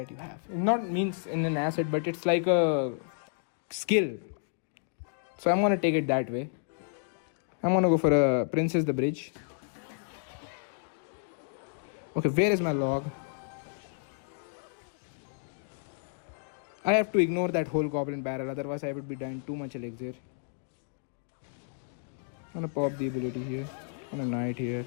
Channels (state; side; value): silent; right; digital silence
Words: you have. It not means in an asset, but it's like a skill. So I'm gonna take it that way. I'm gonna go for a princess the bridge. Okay, where is my log? I have to ignore that whole goblin barrel, otherwise I would be dying too much elixir. I'm gonna pop the ability here. And a knight here.